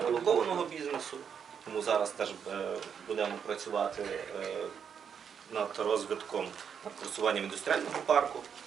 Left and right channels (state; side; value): quieter; left; 7.4 dB